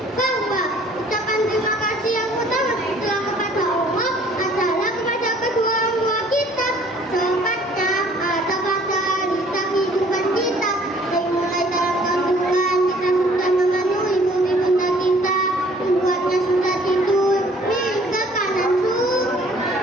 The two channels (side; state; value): both; normal; correlation 0.56